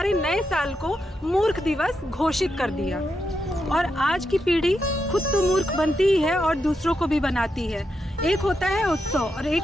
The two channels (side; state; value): both; normal; correlation 0.84